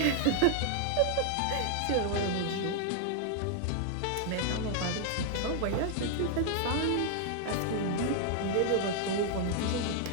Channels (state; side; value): different; both; correlation 0.00